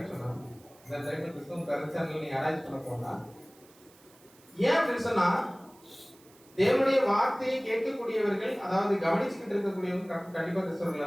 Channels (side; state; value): right; noise; hiss, 27 dB below the sound